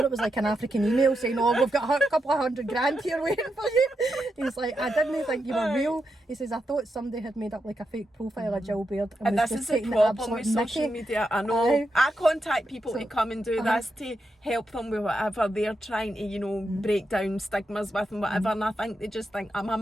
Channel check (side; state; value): both; normal; correlation 0.85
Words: it was like an African email saying, oh, we've got a couple of $100,000 here waiting for you. He's like, I didn't think you were real. He says, I thought somebody had made up like a fake profile of Gill Baird. And was this just is the taking problem with absolute social mickey. media. I know. I contact people to come and do Uh-huh. this to help them with whatever they're trying to, you know, break down stigmas with and whatever. And I think they just think I'm a